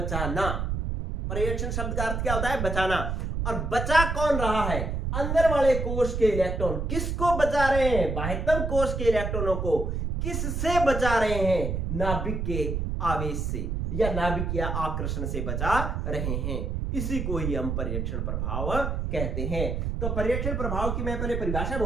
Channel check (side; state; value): right; noise; rumble, 2 dB below the sound